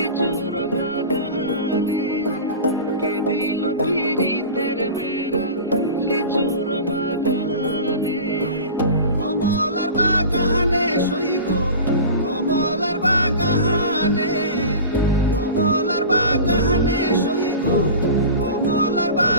বাগানে, কে দিল পিরিতের বেড়া লিচুর বাগানে। কমলার বাগানে সইগ, কমলার বাগানে, কমলার বাগানে সইগ, কমলার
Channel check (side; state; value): both; inverted; correlation -0.34